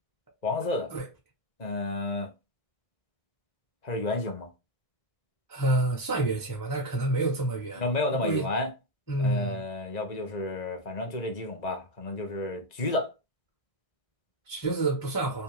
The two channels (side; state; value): right; late; 1.6 ms